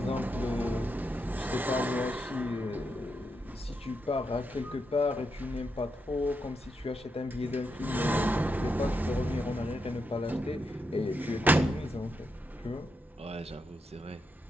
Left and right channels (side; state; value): both; normal; correlation 0.83